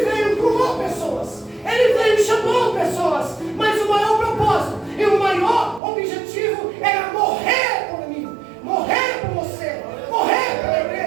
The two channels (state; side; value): drops out; left; at 5.8 s